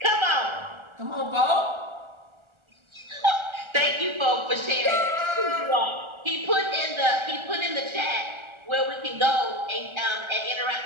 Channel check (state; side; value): late; left; 1.4 ms